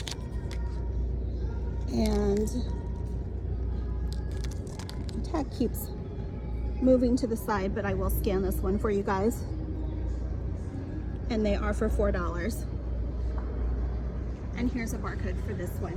and the tag keeps moving to the side, but I will scan this one for you guys, and they are for $4. And here's a barcode for this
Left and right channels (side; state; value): both; identical; correlation 1.00